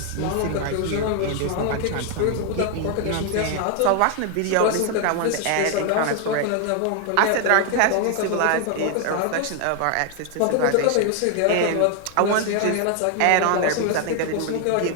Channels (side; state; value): both; different; correlation 0.00